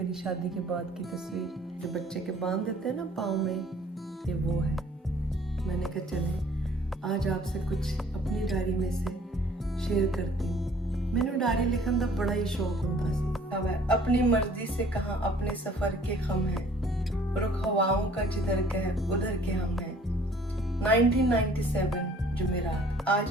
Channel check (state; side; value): normal; both; correlation 0.55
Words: शादी के बाद की तस्वीर, जो बच्चे के बांध देते हैं ना पाँव में, ये वो है। मैंने कहा चले आज आपसे कुछ अपनी डायरी में से शेयर करती हूँ। मैंने डायरी लिखने का बड़ा ही शौक होता है। अपनी मर्जी से कहाँ अपने सफर के खम है, रुख हवाओं का जिधर के है उधर के हम हैं। 1997 जुमेरात, आज